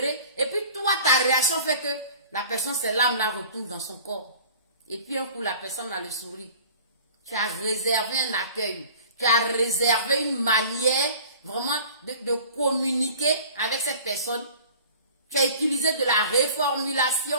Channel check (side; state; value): both; inverted; correlation -0.45